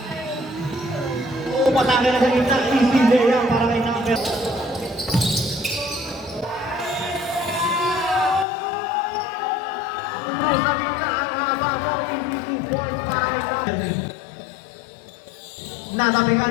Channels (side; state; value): right; drops out; at 8.5 s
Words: Patake na sa gitna. Easy layup para kay number.